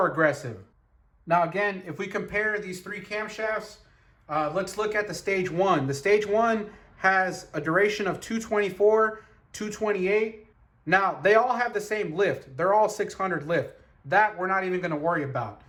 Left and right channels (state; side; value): identical; both; correlation 1.00